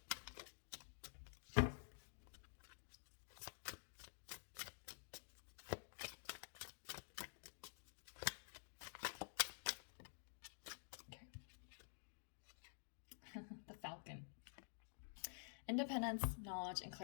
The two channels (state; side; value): silent; right; digital silence